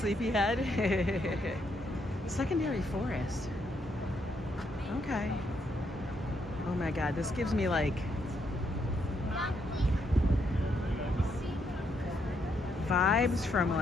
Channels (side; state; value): both; normal; correlation 0.76